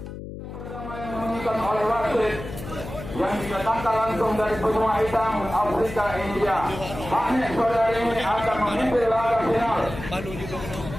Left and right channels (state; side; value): noise; left; hum, 10 dB below the sound